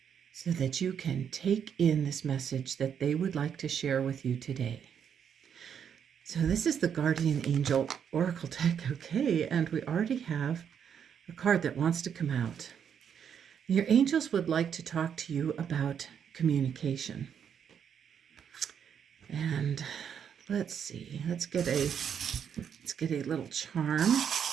so that you can take in this message that they would like to share with you today. So this is the Guardian Angel Oracle deck, okay, and we already have a card that wants to come out. Your angels would like to talk to you about communication. And let's see, let's get a little charm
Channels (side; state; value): left; quieter; 8.0 dB